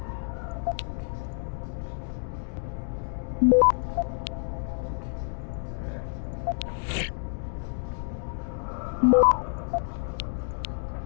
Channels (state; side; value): silent; right; 59 dB below the other